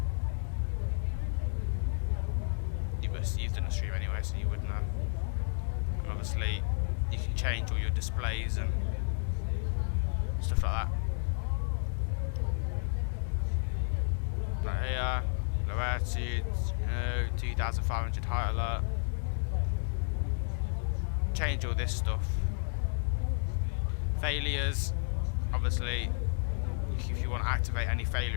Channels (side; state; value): right; silent; 57 dB below the other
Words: You've done a stream anyway, so you would know. And obviously, you can change all your displays and stuff like that. Right here, low altitude, 2,500 height alert. Change all this stuff. Failures, obviously, if you want to activate any